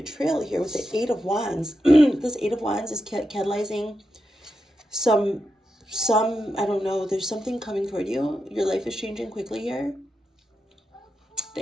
here with the 8 of Wands, this 8 of Wands is catalyzing some, I don't know, there's something coming toward you. Your life is changing quickly here.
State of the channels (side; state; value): both; normal; correlation 0.87